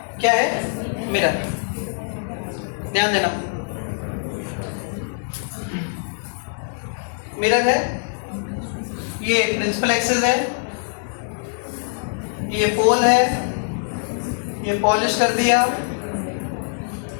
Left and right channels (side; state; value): right; silent; digital silence